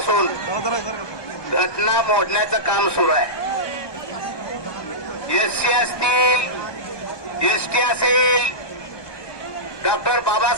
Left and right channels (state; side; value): late; right; 1.2 ms